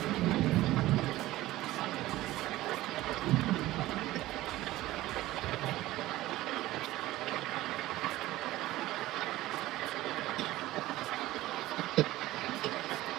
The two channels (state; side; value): quieter; left; 16.7 dB